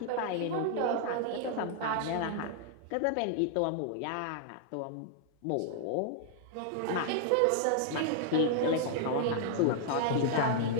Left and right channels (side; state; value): both; different; correlation -0.01